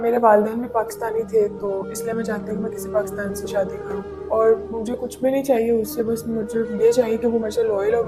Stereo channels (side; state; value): both; identical; correlation 1.00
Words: वालिदैन भी पाकिस्तानी थे, तो इसलिए मैं चाहती हूँ कि मैं किसी पाकिस्तान से शादी करूँ। और मुझे कुछ भी नहीं चाहिए उससे, बस मुझे ये चाहिए कि वो मेरे से लॉयल और